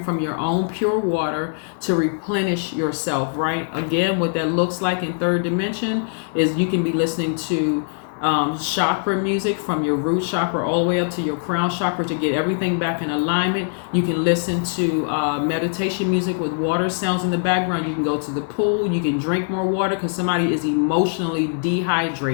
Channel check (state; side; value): silent; right; digital silence